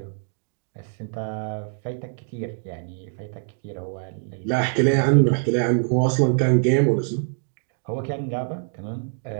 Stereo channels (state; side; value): silent; left; digital silence